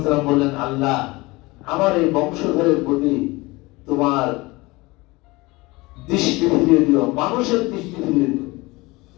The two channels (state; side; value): quieter; right; 22.5 dB